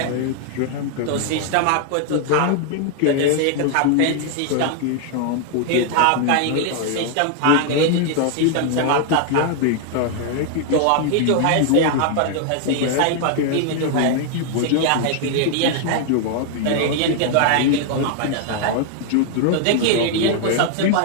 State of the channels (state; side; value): different; both; correlation 0.00